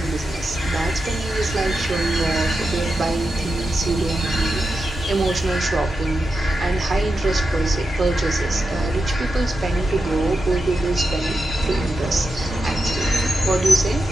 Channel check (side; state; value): both; normal; correlation 0.89